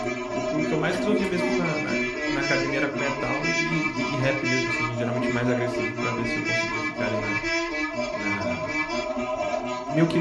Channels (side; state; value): both; identical; correlation 1.00